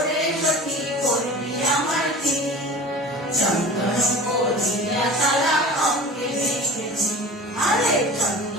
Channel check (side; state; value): both; normal; correlation 0.38